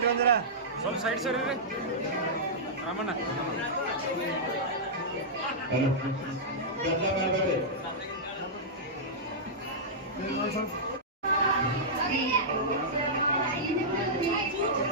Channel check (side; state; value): both; normal; correlation -0.12